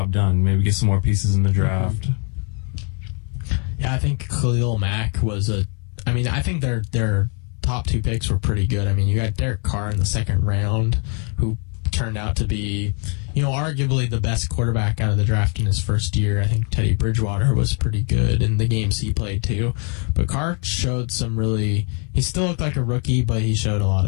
done. Maybe get some more pieces in the draft. Yeah, I think Khalil Mack was I think their top 2 picks were pretty good. I mean, you got Derek Carr in the second round, who turned out to be, arguably the best quarterback out of the draft in his first year. I think Teddy Bridgewater was pretty good in the games he played too. But Carr showed he still looked like a rookie, but he showed a lot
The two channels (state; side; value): quieter; right; 38.1 dB